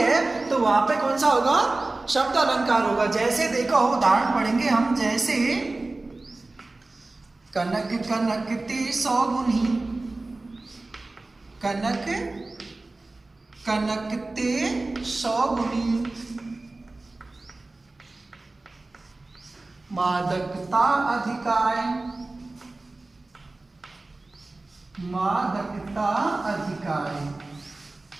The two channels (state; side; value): quieter; left; 3.1 dB